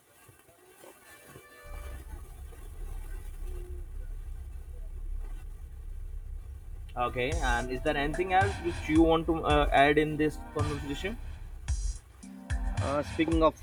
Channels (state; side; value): identical; both; correlation 1.00